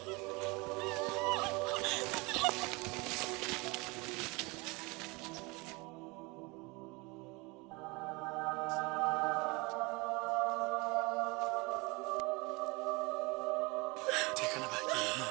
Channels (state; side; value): quieter; left; 26.1 dB